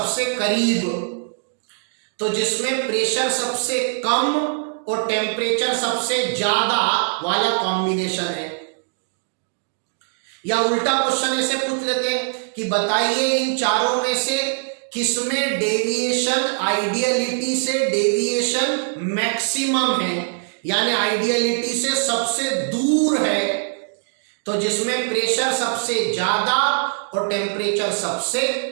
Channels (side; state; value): left; silent; digital silence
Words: करीब, तो जिसमें प्रेशर सबसे कम और टेम्परेचर सबसे ज्यादा वाला कॉम्बिनेशन है। या उल्टा क्वेश्चन ऐसे पूछ लेते हैं कि बताइए इन चारों में से किसमें डेविएशन आइडियलिटी से डेविएशन मैक्सिमम है, यानी आइडियलिटी से सबसे दूर है। तो जिसमें प्रेशर सबसे ज्यादा और टेम्परेचर सबसे